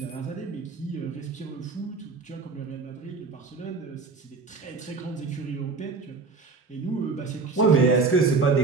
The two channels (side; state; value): left; quieter; 4.2 dB